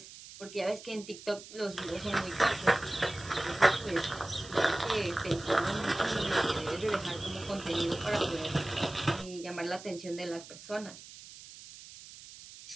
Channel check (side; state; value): right; noise; hiss, 16 dB below the sound